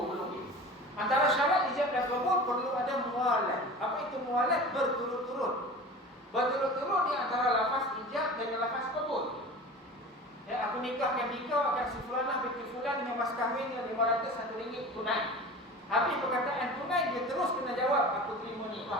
belum ni. Antara syarat ijab dan qabul perlu ada mualat. Apa itu mualat? Berturut-turut. Berturut-turut di antara lafaz ijab dan lafaz qabul. Ya, aku nikahkan kau akan si fulanah binti fulan dengan mas kahwin yang RM500 tunai. Habis perkataan tunai, dia terus kena jawab, aku terima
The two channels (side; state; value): both; normal; correlation 0.36